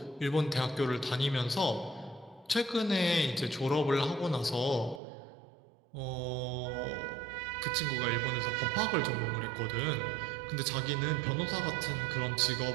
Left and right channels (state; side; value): drops out; left; at 5.0 s